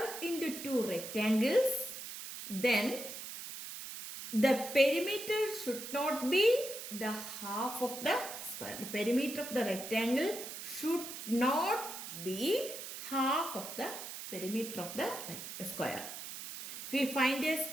into 2 rectangles, then the perimeter should not be the half of the square. The perimeter of the rectangle should not be half of the perimeter of the square. If we find a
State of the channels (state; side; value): noise; right; hiss, 9 dB below the sound